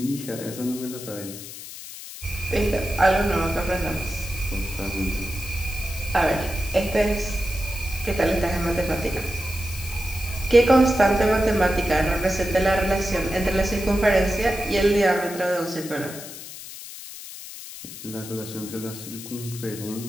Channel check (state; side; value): noise; left; hiss, 12 dB below the sound